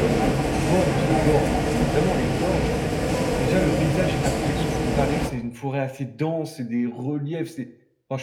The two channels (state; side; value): identical; both; correlation 1.00